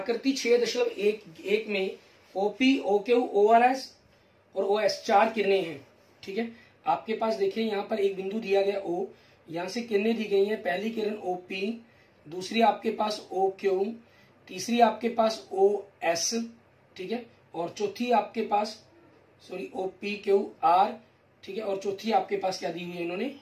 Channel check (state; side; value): identical; both; correlation 1.00